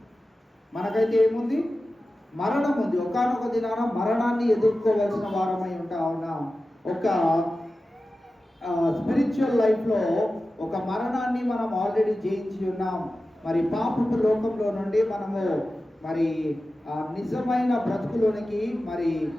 మనకైతే ఏముంది? మరణం ఉంది. ఒకానొక దినాన మరణాన్ని ఎదుర్కోవాల్సిన వారమై ఉంటా ఉన్నాం. ఒక స్పిరిచువల్ లైఫ్లో ఒక మరణాన్ని మనం ఆల్రెడీ జయించి ఉన్నాం. మరి పాపపు లోకంలో నుండి మనము నిజమైన బ్రతుకులోనికి,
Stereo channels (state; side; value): normal; both; correlation 0.94